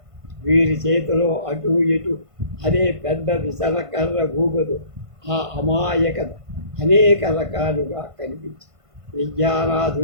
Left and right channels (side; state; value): left; late; 1.5 ms